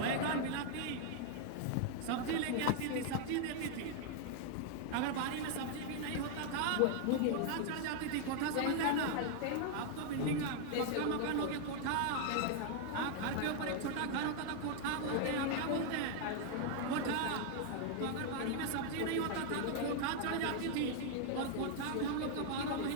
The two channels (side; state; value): both; different; correlation 0.00